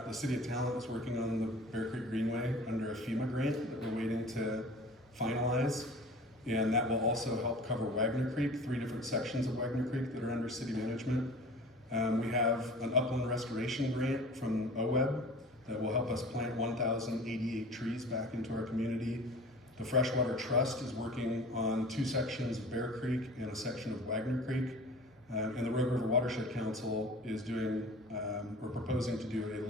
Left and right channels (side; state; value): both; normal; correlation 0.41